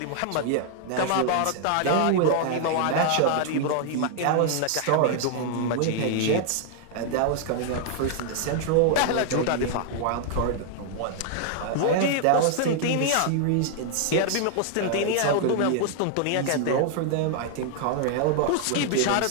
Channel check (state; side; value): different; both; correlation 0.00